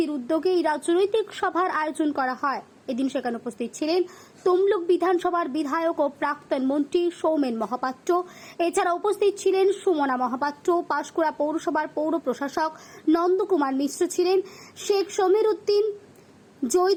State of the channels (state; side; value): identical; both; correlation 1.00